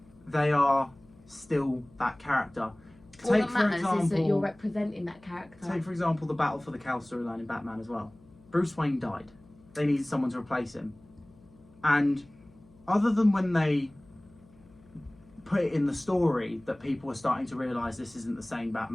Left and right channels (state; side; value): noise; left; hum, 27 dB below the sound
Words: They are still that character. All that matters is that you're representing that character. Take, for example, the Battle for the Cowl storyline in Batman as well. Bruce Wayne died. They needed someone to replace him. And other than when they put it in the story that people were starting to realise this isn't the same